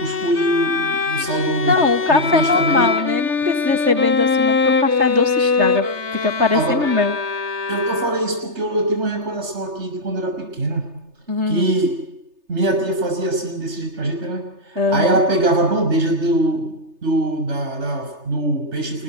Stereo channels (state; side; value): late; left; 3.3 ms